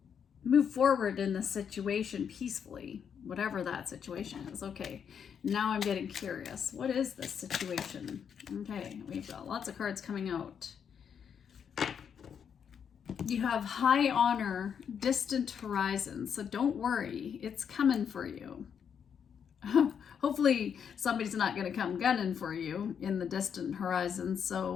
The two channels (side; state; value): right; quieter; 7.6 dB